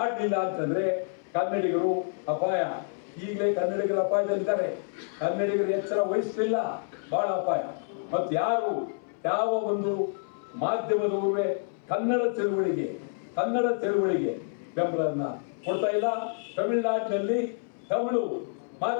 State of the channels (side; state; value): right; silent; 59 dB below the other